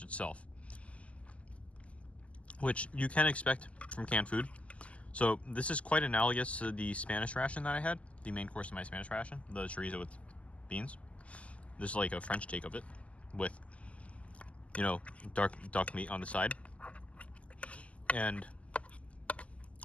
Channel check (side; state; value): right; late; 0.065 ms